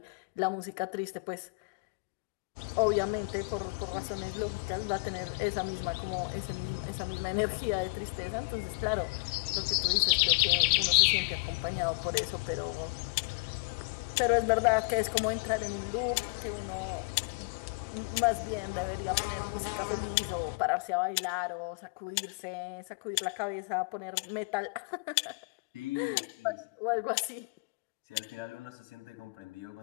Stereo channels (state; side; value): quieter; right; 29.3 dB